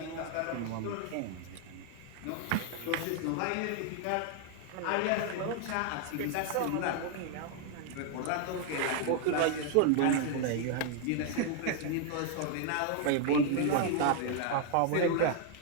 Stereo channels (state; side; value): different; both; correlation 0.00